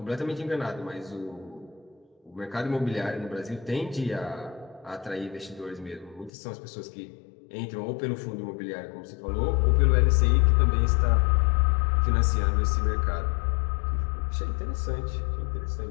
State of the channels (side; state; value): right; drops out; at 6.3 s